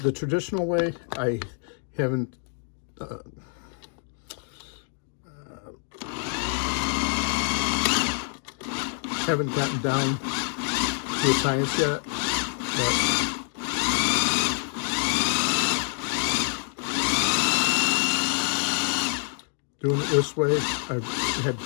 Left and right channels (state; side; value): silent; right; 61 dB below the other